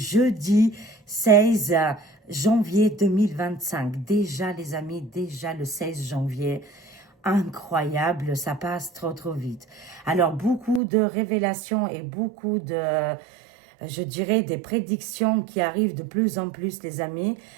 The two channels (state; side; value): drops out; left; at 10.8 s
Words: 16 janvier 2025. Déjà les amis, déjà le 16 janvier. Incroyable, ça passe trop vite. Alors beaucoup de révélations et beaucoup de je dirais, des prédictions qui arrivent de plus en plus, les amis.